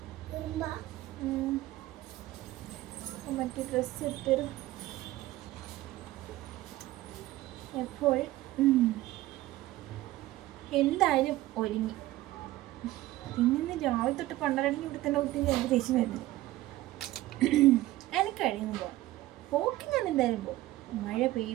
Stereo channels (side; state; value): left; quieter; 16.7 dB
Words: മറ്റേ ഡ്രസ്സ് ഇട്ടൊരു എപ്പോൾ എന്തായാലും ഒരുങ്ങി. പിന്നെ രാവിലെ തൊട്ട് പണ്ടരണെങ്കിൽ ഇവിടെ തന്നെ കുട്ടി എനിക്ക് ദേഷ്യം വരുന്നത്. എനിക്ക് കഴിയുമ്പോൾ പോകാം, പോക്കി ഞാൻ എന്തായാലും പോകും. മഴ